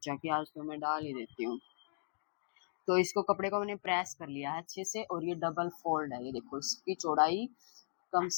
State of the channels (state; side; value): silent; right; digital silence